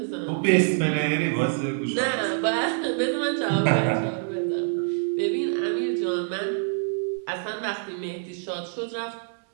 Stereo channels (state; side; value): silent; left; 61 dB below the other